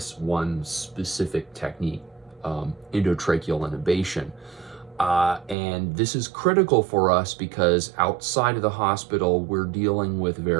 one specific technique, endotracheal intubation. And this is critical for us because outside of the hospital, we're dealing with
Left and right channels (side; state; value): left; drops out; at 5.6 s